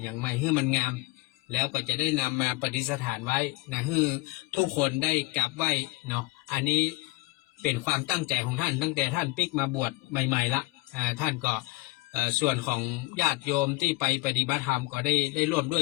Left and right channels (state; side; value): quieter; right; 22.1 dB